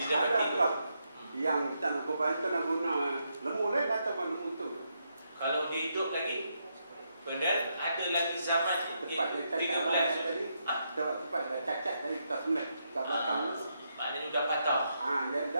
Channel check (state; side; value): inverted; both; correlation -0.80